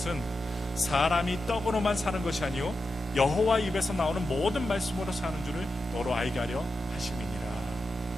사람이 떡으로만 사는 것이 아니요 여호와 입에서 나오는 모든 말씀으로 사는 줄을 너로 알게 하려 하심이니라.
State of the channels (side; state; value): both; normal; correlation 0.89